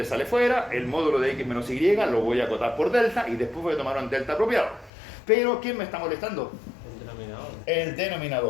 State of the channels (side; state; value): right; drops out; at 4.9 s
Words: sale fuera, el módulo de x menos y lo voy a acotar por delta y después voy a tomar un delta apropiado. Pero ¿quién me está molestando? El